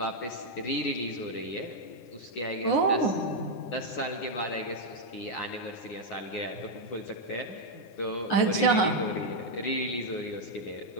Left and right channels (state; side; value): late; right; 9.7 ms